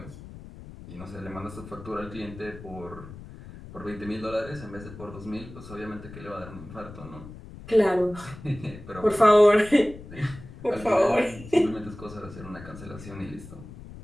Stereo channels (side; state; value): left; noise; rumble, 15 dB below the sound